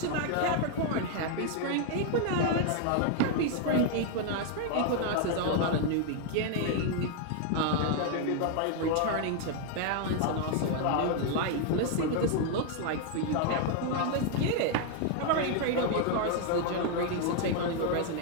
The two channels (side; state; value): both; different; correlation 0.00